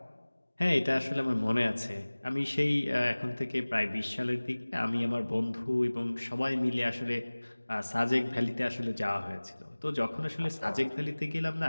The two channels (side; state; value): both; inverted; correlation -1.00